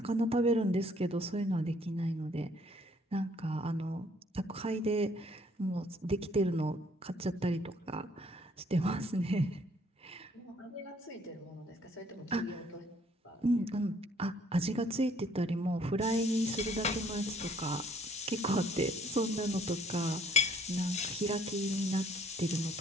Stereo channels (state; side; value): normal; both; correlation 0.62